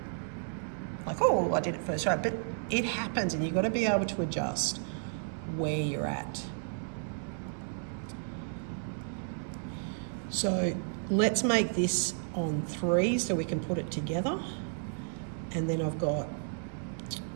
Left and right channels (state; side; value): silent; left; digital silence